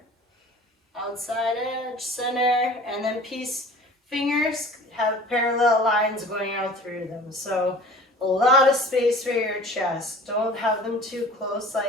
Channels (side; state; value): both; normal; correlation 0.45